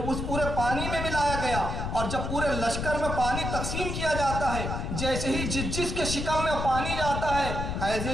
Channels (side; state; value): left; noise; rumble, 3 dB below the sound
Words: اس پورے پانی میں ملایا گیا، اور جب پورے لشکر میں پانی تقسیم کیا جاتا ہے، جیسے ہی جس کے شکم میں پانی جاتا ہے